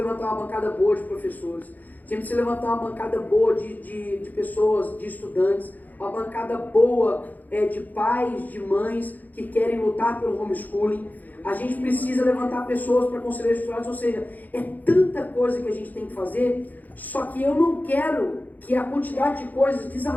uma bancada boa de professores. A gente precisa levantar uma bancada boa de pessoas, de estudantes. Uma bancada boa de pais, de mães que querem lutar pelo homeschooling. A gente precisa levantar pessoas para conselheiros estudantes, ou seja, é tanta coisa que a gente tem que fazer, só que eu não quero que a quantidade de coisas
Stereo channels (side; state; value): right; late; 0.082 ms